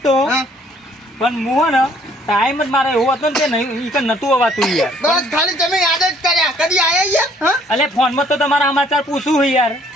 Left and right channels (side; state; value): both; normal; correlation 0.61